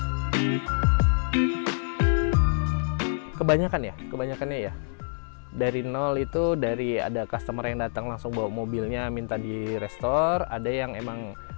Kebanyakannya ya dari nol itu, dari ada customer yang datang langsung bawa mobilnya minta di restore, ada yang emang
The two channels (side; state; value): right; silent; digital silence